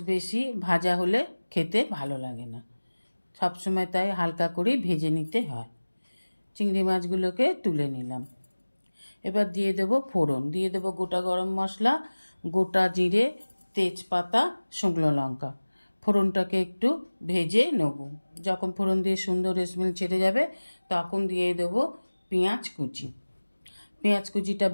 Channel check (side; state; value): both; inverted; correlation -1.00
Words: বেশি ভাজা হলে খেতে ভালো লাগে না, সবসময় তাই হালকা করে ভেজে নিতে হয়। চিংড়ি মাছগুলোকে তুলে নিলাম। এবার দিয়ে দেব ফোড়ন। দিয়ে দেব গোটা গরম মশলা, গোটা জিরে, তেজপাতা, শুকনো লঙ্কা। ফোড়নটাকে একটু ভেজে নেব। যখন ফোড়ন দিয়ে সুন্দর স্মেল ছেড়ে যাবে তখন দিয়ে দেব পেঁয়াজ কুচি। পেঁয়াজ কুচিটা